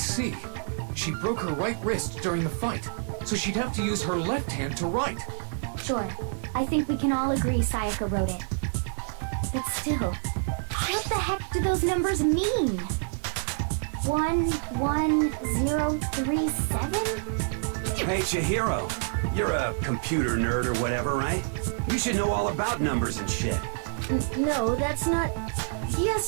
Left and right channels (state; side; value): silent; left; digital silence